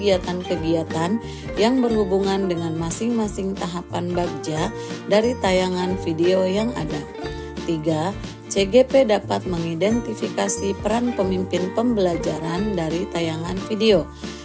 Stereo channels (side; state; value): both; identical; correlation 1.00